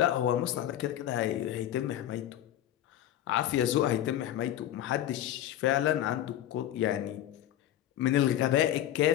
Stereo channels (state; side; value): quieter; right; 12.3 dB